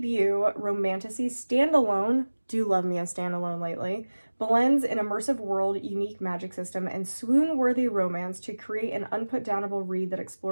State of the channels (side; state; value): both; inverted; correlation -1.00